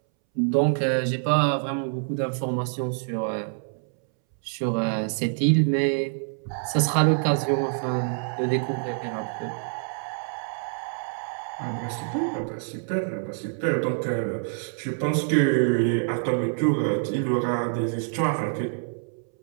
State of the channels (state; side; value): silent; left; 61 dB below the other